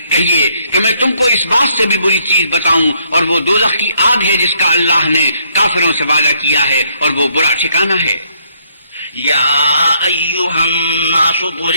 کہیے کہ میں تم کو اس بات سے بھی بری چیز بتاؤں، اور وہ دوزخ کی آگ ہے جس کا اللہ نے کافروں سے وعدہ کیا ہے، اور وہ برا ٹھکانہ ہے. یا ایھا الناس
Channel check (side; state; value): both; inverted; correlation -0.69